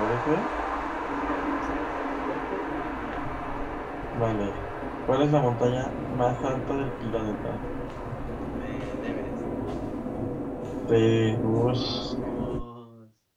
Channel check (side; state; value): both; identical; correlation 1.00